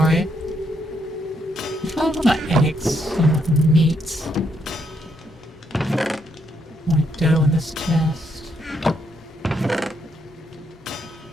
There's probably a lot of eggs and meat. More dough in this chest.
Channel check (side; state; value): both; normal; correlation 0.76